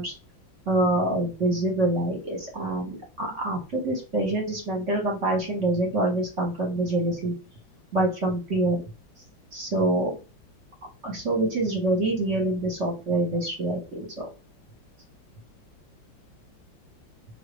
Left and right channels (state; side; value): normal; both; correlation 0.26